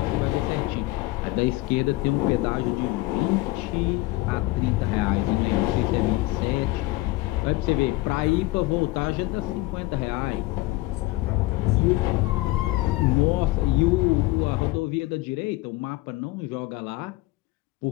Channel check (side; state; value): right; quieter; 19.5 dB